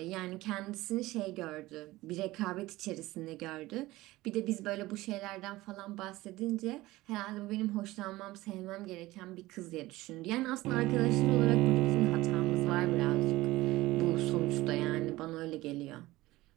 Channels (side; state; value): left; quieter; 18.4 dB